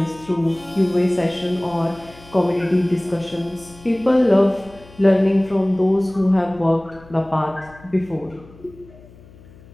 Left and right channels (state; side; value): noise; left; hum, 23 dB below the sound